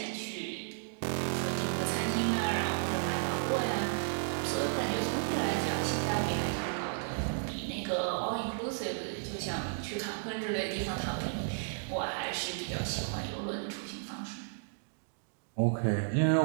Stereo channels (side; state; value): left; silent; digital silence